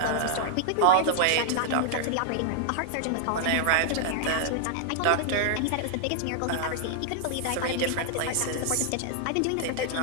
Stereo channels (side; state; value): both; different; correlation -0.01